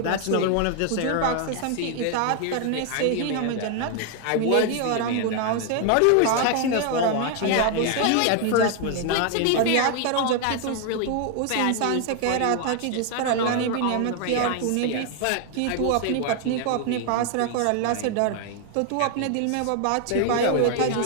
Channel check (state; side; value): different; both; correlation 0.00